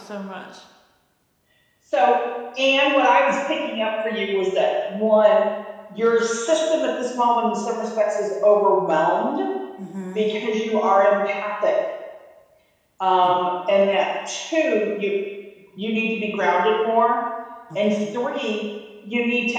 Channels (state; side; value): identical; both; correlation 1.00